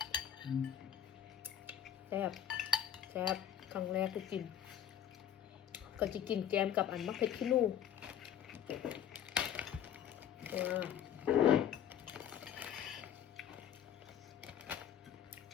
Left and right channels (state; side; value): quieter; right; 9.7 dB